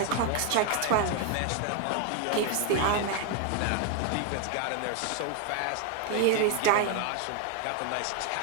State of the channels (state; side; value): different; both; correlation 0.00